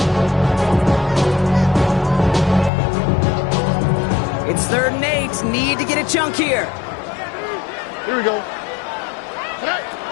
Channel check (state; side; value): drops out; right; at 2.7 s